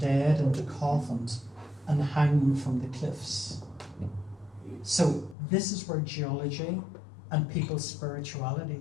into coffins and hang them from the cliffs. So this is where geology and people's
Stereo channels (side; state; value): right; drops out; at 5.4 s